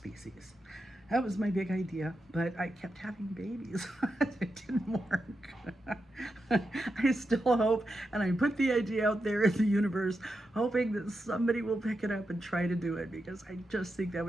That was my big idea, but I kept having babies. It didn't work. I still hope, and I put the idea out there in the universe, hoping that somebody will pick it up and try to do it, because I just think that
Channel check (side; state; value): both; normal; correlation 0.87